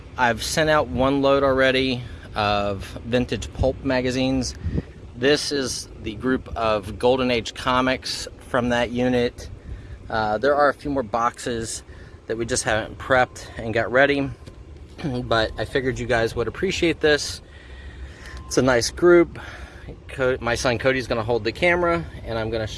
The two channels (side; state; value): both; identical; correlation 1.00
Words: I've sent out one load already of vintage pulp magazines. This is the group of Golden Age comics from that unit. There are a few more boxes that we just haven't prepped and got ready, but I figured you guys would appreciate this. It's a nice group. My son Cody's gonna hold the camera, and I'm gonna